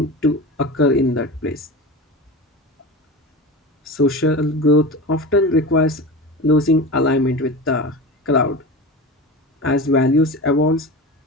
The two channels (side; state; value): both; normal; correlation 0.29